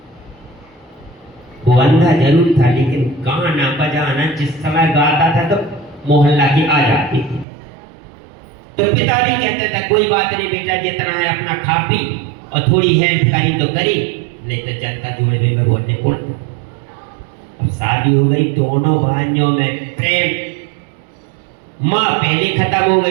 वो अंधा जरूर था, लेकिन गाना बजाना जिस समय गाता था तो मोहल्ला की आ जाती थी। तो पिता भी कहते थे कोई बात नहीं बेटा, जितना है अपना खा पी और थोड़ी हेल्प करी तो करी, नहीं तो जनता जुड़े में बोलने को। अब शादी हो गई, दोनों भाइयों में प्रेम। माँ पहले खत्म हो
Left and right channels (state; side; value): drops out; left; at 7.5 s